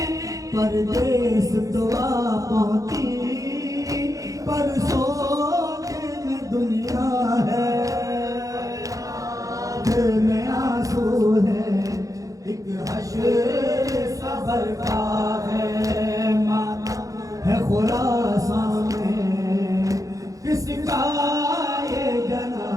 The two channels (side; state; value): left; late; 0.16 ms